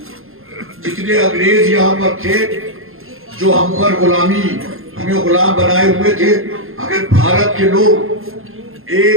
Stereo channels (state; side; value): late; left; 0.61 ms